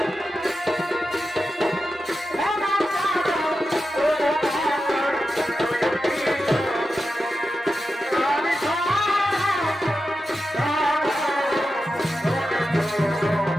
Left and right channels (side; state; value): both; normal; correlation 0.90